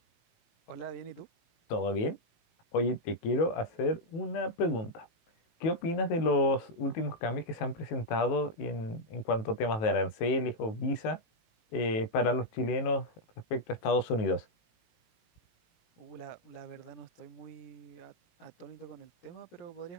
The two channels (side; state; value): right; late; 18 ms